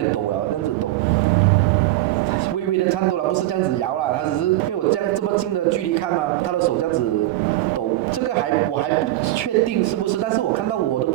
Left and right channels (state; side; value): quieter; left; 15.9 dB